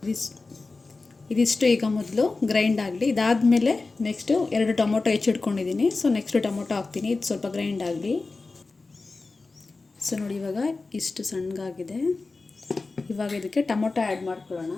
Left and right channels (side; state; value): right; quieter; 3.7 dB